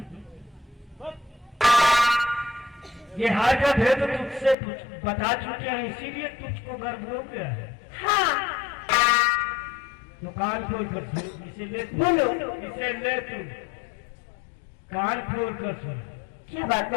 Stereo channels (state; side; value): drops out; right; at 4.5 s